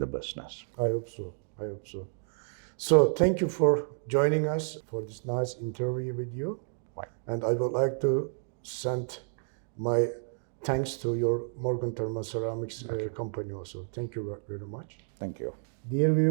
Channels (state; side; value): silent; left; digital silence